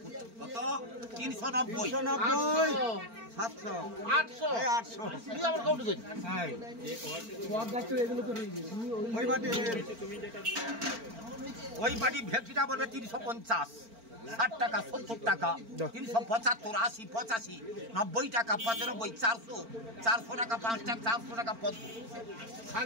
কত 390 700 800 800 তুই আবার কাউন্ট করি হ্যাঁ সব ডাক্তার এগুলো তো রইছে ওই বাড়ি ভেটকিটা বলবে 350 60 টাকা 70 টাকা 375 80 85 90 টাকা 95 400 400 টাকা 5 টাকা 400 টাকা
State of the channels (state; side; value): late; left; 4.4 ms